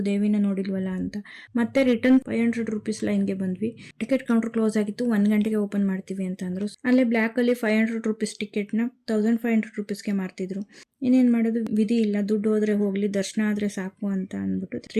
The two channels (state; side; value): identical; both; correlation 1.00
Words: ದೇವಿನ ನೋಡಿಲ್ವಲ್ಲ ಅಂತ. ಮತ್ತೆ ರಿಟರ್ನ್ 500 ರುಪೀಸ್ ಲೈನ್ಗೆ ಬಂದ್ವಿ. ಟಿಕೆಟ್ ಕೌಂಟರ್ ಕ್ಲೋಸ್ ಆಗಿತ್ತು, 1 ಗಂಟೆಗೆ ಓಪನ್ ಮಾಡ್ತೀವಿ ಅಂತ ಅಂದ್ರು. ಅಲ್ಲೇ ಬ್ಲ್ಯಾಕ್ ಅಲ್ಲಿ 500 ರುಪೀಸ್ ಟಿಕೆಟ್ನ 1500 ರುಪೀಸ್ಗೆ ಮಾರ್ತಿದ್ರು. ಇನ್ನೇನ್ ಮಾಡೋದು, ವಿಧಿ ಇಲ್ಲ, ದುಡ್ಡು ಹೋದ್ರೆ ಹೋಗ್ಲಿ, ದರ್ಶನ ಆದ್ರೆ ಸಾಕು ಅಂತ ಅಂದ್ಬಿಟ್ಟು